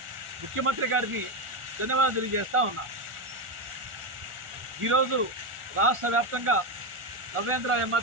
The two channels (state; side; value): late; left; 1.4 ms